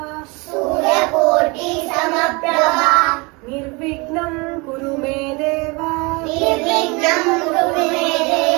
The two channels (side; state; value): left; quieter; 27.5 dB